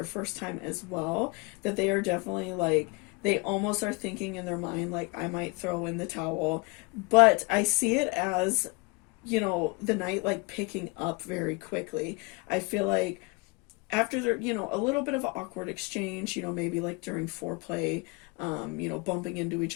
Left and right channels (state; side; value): quieter; right; 28.7 dB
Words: first time as well, that they are definitely like, they almost are thinking in their mind like, I might throw in the towel. But I see it as, you know, the night like picking up very quickly. I feel like after there, you know, a little bit of an awkward exchange, you know, maybe like during foreplay, you know, bumping into each